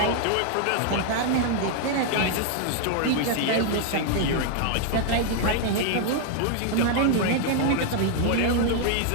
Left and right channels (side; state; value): both; different; correlation 0.00